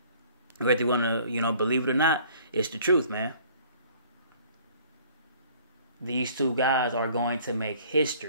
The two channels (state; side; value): inverted; both; correlation -0.55